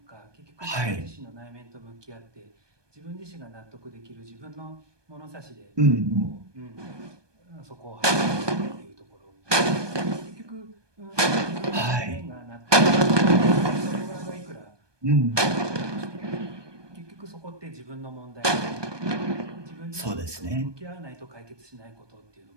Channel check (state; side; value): late; left; 1.2 ms